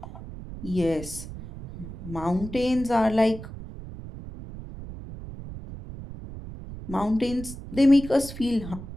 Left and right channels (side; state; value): right; noise; rumble, 12 dB below the sound